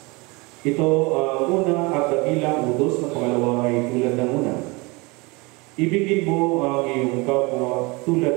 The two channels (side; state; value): left; quieter; 26.2 dB